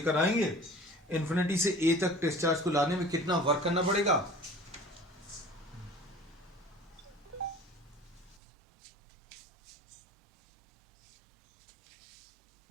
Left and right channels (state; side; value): drops out; left; at 8.4 s